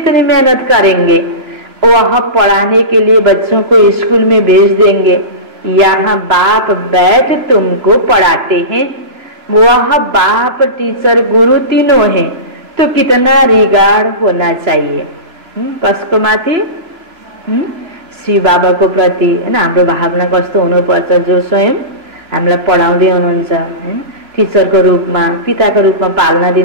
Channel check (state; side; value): late; left; 3.0 ms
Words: मेहनत करेंगे। वह पढ़ाने के लिए बच्चों को स्कूल में भेज देंगे, यहाँ बाप बैठ तुमको पढ़ाते हैं। वह बाप टीचर गुरु तीनों हैं, तो कितना रिगार्ड होना चाहिए कसको माथि? शिव बाबा को प्रति हैन हाम्रो भावना कस्तो हुनुपर्छ? जो स्वयं हामीलाई पढाउँदै हुनुहुन्छ हैन, टीचरको रूपमा, पिताको रूपमा पालना